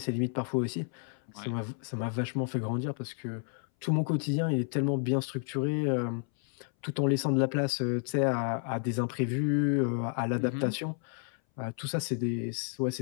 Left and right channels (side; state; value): right; silent; 57 dB below the other